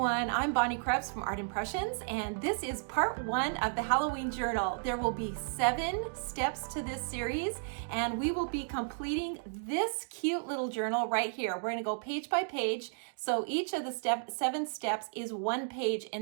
I'm Bonnie Krebs from Art Impressions, and this is part 1 of the Halloween journal. There will be 7 steps to this series, and we will be completing this cute little journal right here. We're going to go page by page, so each of the 7 steps is 1 page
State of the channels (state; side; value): silent; left; digital silence